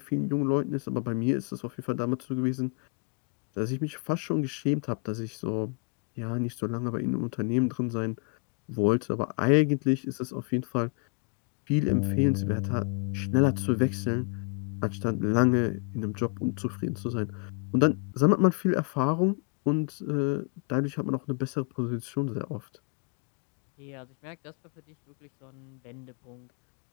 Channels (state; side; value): quieter; right; 34.9 dB